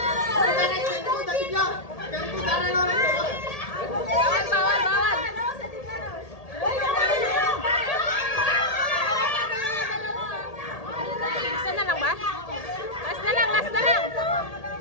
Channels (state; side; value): late; right; 1.8 ms